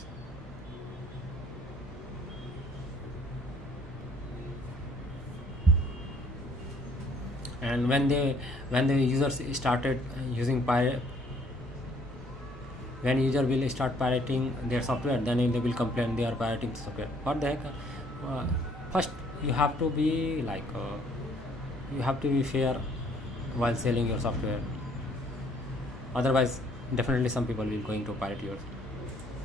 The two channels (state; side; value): normal; both; correlation 0.62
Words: And when the users started using pirate, when user will start pirating their software, then they will complain they are pirating the software. What the heck? First you have to be like you have to be fair while selling your software, otherwise definitely some people will going to pirate yours.